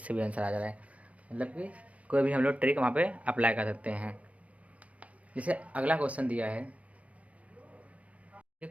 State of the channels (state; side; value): late; left; 0.065 ms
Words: भी आंसर आ जा रहा है, मतलब कि कोई भी हम लोग ट्रिक वहाँ पे अप्लाई कर सकते हैं। जैसे अगला क्वेश्चन दिया है, ये